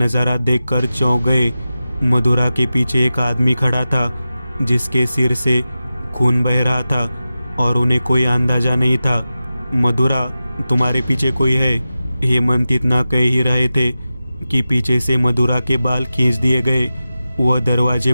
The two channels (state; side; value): inverted; both; correlation -0.93